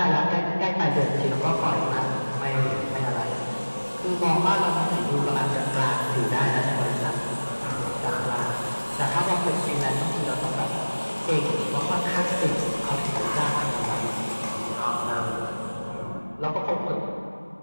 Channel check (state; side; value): inverted; both; correlation -1.00